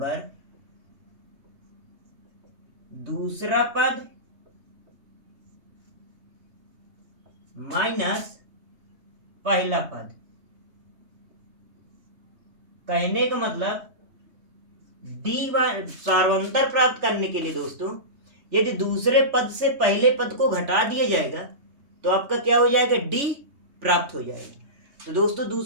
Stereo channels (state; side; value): late; left; 3.2 ms